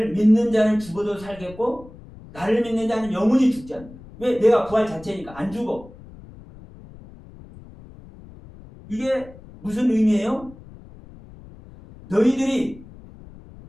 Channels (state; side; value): noise; left; rumble, 19 dB below the sound